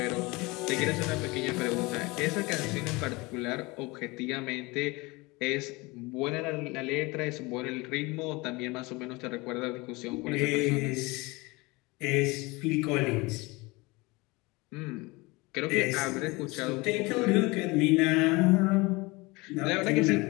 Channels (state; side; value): quieter; right; 24.2 dB